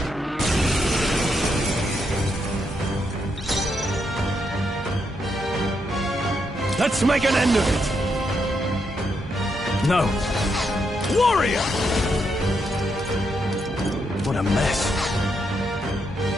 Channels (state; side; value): normal; both; correlation 0.80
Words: Let's make an end of it! No. Warrior! What a mess.